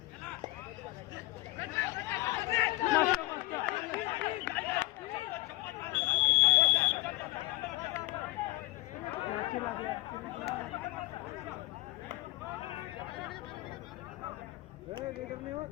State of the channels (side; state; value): right; quieter; 19.8 dB